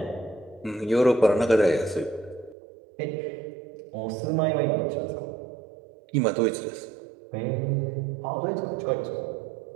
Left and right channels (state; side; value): drops out; left; at 2.6 s